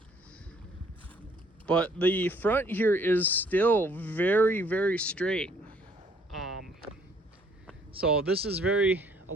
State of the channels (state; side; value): normal; both; correlation 0.62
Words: But the front here is still very straight. So this is very